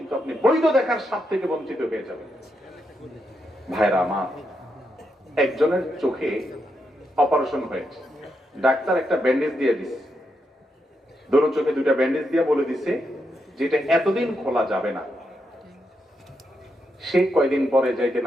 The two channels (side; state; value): both; normal; correlation 0.83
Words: আপনি বৈধ দেখার স্বাদ থেকে বঞ্চিত হয়ে যাবেন। ভাইরা আমার, একজনের চোখে অপারেশন হয়েছে, ডাক্তার একটা ব্যান্ডেজ দিয়ে দিছে, দুটো চোখে দুইটা ব্যান্ডেজ দিয়ে বলে দিছে যেটা এতদিন খোলা যাবে না। সে কয়দিন পরে যাইতে